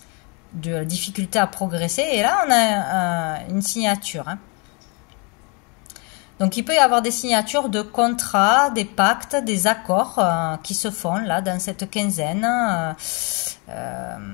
de difficulté à progresser. Et là, on a une signature. Hein. Donc, il peut y avoir des signatures de contrats, des pactes, des accords qui se font là dans cette quinzaine.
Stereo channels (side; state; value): right; quieter; 32.6 dB